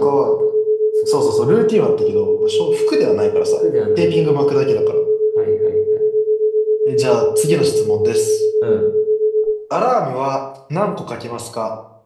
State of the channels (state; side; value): identical; both; correlation 1.00